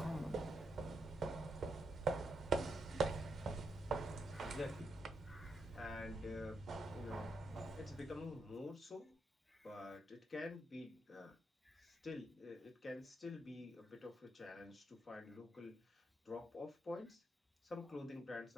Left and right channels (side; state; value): both; normal; correlation 0.82